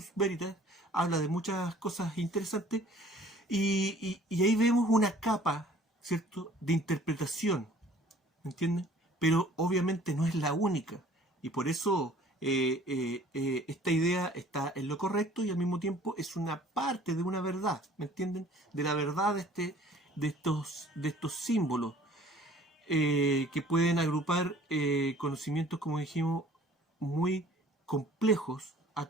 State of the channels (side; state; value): both; normal; correlation 0.53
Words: Veritas, habla de muchas cosas interesantes. Y ahí vemos una capa, ¿cierto?, de interpretación, ¿me entiendes? Pero obviamente no es la única. Y por eso esta idea está en lo correcto y al mismo tiempo es una parte de una verdad, ¿me entienden? De la verdad de estos símbolos que pueden agrupar conocimientos, como dijimos, muy complejos a